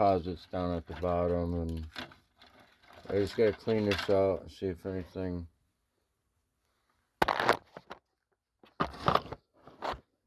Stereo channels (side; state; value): both; identical; correlation 1.00